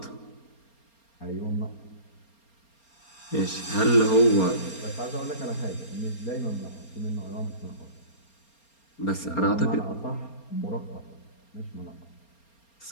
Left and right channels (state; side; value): late; right; 4.3 ms